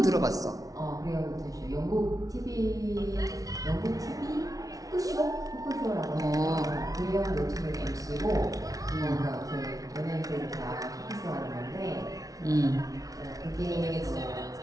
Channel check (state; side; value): late; left; 0.18 ms